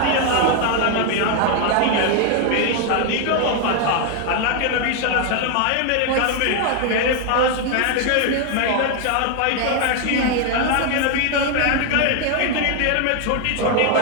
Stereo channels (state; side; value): different; both; correlation 0.01